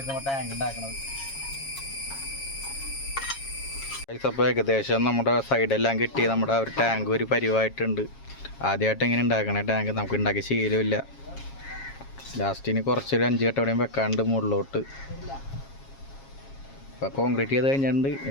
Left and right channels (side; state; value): right; late; 7.3 ms